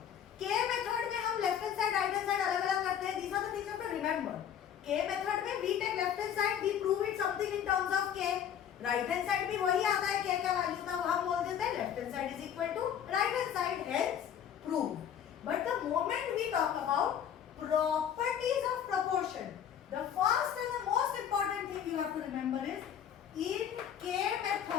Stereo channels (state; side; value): quieter; right; 9.1 dB